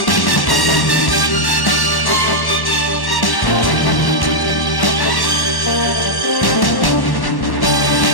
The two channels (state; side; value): late; right; 1.1 ms